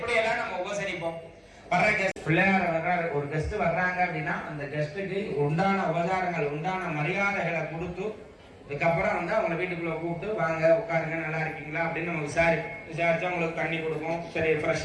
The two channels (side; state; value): both; identical; correlation 1.00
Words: எல்லாம் நம்ம உபசரிப்போம். வர்ற கெஸ்ட் பிள்ளையார் வர்றாரு, ஒரு கெஸ்ட் வர்றாங்க அப்படின்னா அந்த கெஸ்ட்டுக்கு உண்டான உபச்சாரங்கள் உண்டான மரியாதைகளை கொடுத்து இதுக்கப்புறம் வந்து அவங்க வீட்டுக்குள்ள கூப்பிட்டு வாங்க உட்காருங்க நல்லா இருக்கீங்களா அப்படின்னு நம்ம விசாரிச்சு அவங்களுக்கு தண்ணி கொடுப்போம். சரி ஃப்ரெஷ்